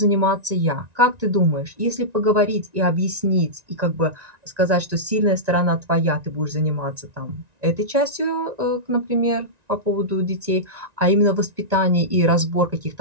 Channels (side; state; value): left; late; 1.9 ms